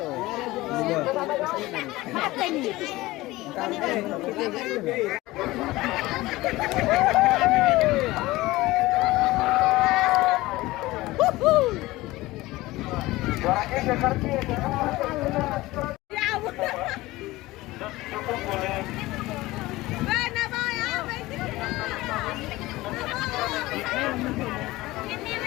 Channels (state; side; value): quieter; right; 19.0 dB